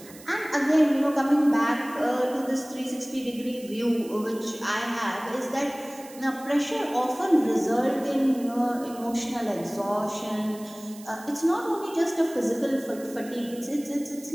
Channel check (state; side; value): noise; right; hiss, 19 dB below the sound